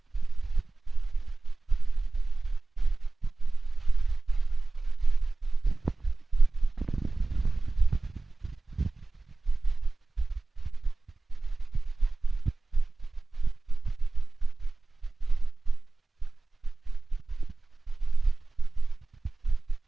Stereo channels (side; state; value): left; quieter; 3.4 dB